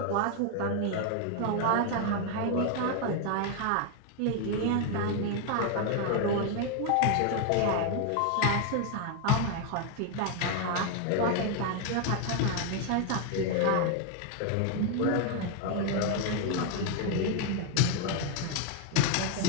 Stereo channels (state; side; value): different; both; correlation 0.01